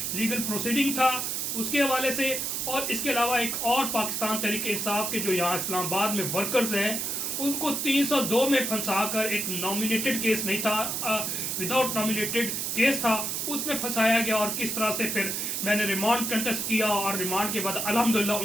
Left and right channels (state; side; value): noise; right; hiss, 1 dB below the sound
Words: لیگل پروسیڈنگ تھا اس کے حوالے سے، اور اس کے علاوہ ایک اور پاکستان تحریک انصاف کے جو یہاں اسلام آباد میں ورکرز ہیں ان کو 302 میں پھنسا کر، ایک نامینیٹڈ کیس نہیں تھا، وداؤٹ نامینیٹڈ کیس تھا، اس میں پھنسایا گیا، اور کس طرح سے پھر میں نے ریمانڈ کنٹیسٹ کیا اور ریمانڈ کے بعد الحمدللہ